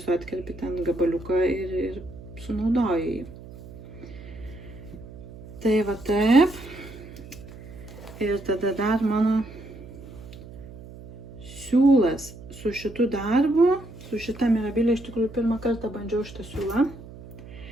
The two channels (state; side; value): noise; right; hum, 16 dB below the sound